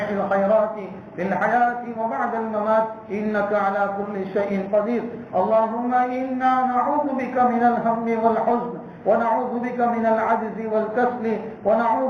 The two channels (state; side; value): identical; both; correlation 1.00